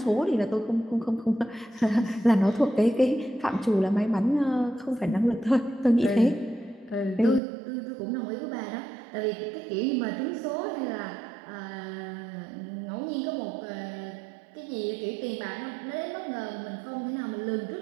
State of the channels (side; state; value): left; drops out; at 7.4 s